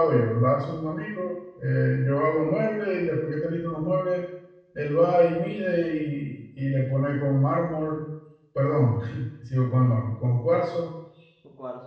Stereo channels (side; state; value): both; identical; correlation 1.00